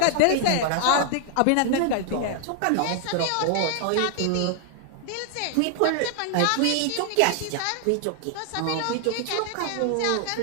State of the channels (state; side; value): different; both; correlation 0.00